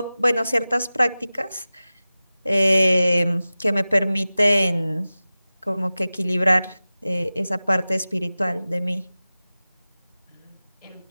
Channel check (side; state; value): both; inverted; correlation -0.96